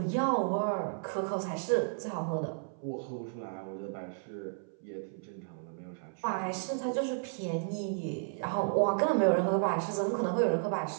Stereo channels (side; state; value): left; silent; 56 dB below the other